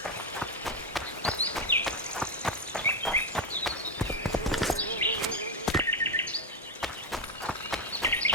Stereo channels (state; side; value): normal; both; correlation 0.09